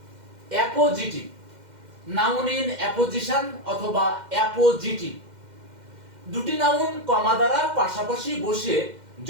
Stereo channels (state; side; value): late; left; 2.1 ms